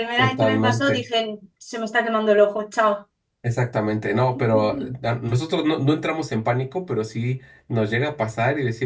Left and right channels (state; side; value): identical; both; correlation 1.00